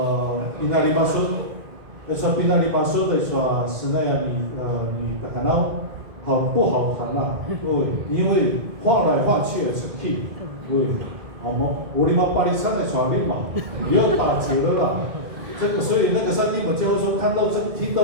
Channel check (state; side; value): late; left; 2.0 ms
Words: pinali masuk说pinali masuk 的说snai 你大家好不好谈啊对因为换来换去的成绩对我们巴黎山的传令嘛，也要打折了啦。这个，所以那个山地们教授看到听